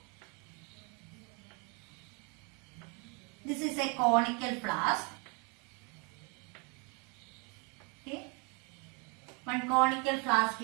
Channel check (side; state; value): left; quieter; 33.4 dB